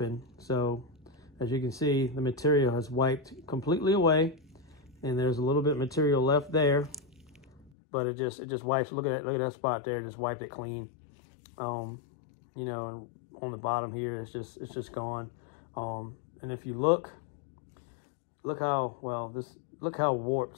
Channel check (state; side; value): drops out; right; at 7.7 s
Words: So as you can see, the material has wiped completely away, and there's a little bit of material left there, but it just wipes. Look at that spot there, just wiped it clean. You know, and on the bottom here, it's just gone. And if you look how